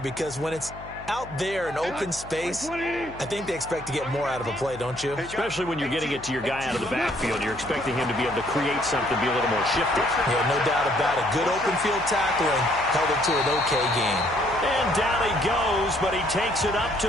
when it's out there in open space, I think they expect to get more out of a play, don't you? Especially when you're getting it to your guy out of the backfield. You're expecting him to be able to create something, be a little more shifty. Yeah, no doubt about it. Good open field tackling held it to an okay game. And down he goes, but he takes it up to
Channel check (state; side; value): noise; left; hum, 16 dB below the sound